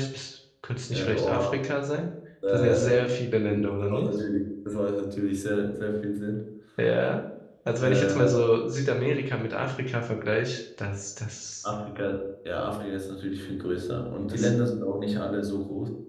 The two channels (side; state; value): both; identical; correlation 1.00